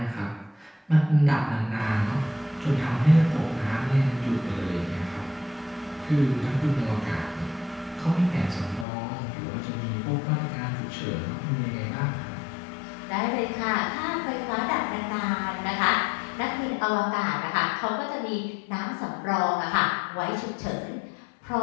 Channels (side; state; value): right; drops out; at 8.8 s